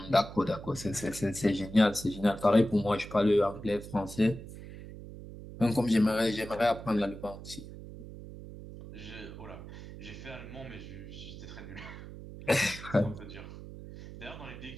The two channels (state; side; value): noise; right; hum, 13 dB below the sound